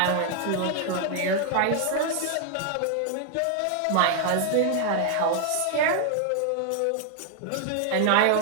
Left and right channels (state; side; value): different; both; correlation 0.00